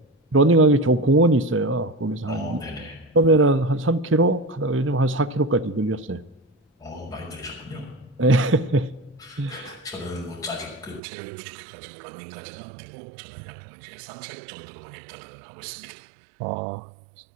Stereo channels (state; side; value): drops out; left; at 11.0 s